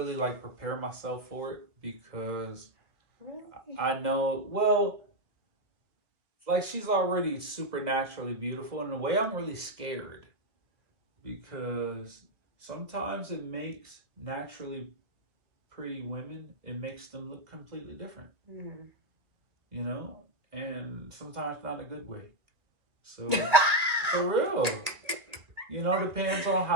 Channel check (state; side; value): late; left; 1.6 ms